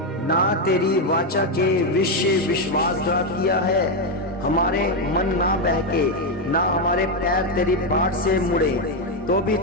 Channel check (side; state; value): both; normal; correlation 0.05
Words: ना तेरी वाचा के विषय विश्वासघात किया है, हमारे मन ना बहके, ना हमारे पैर तेरी बाट से मुड़े, तो भी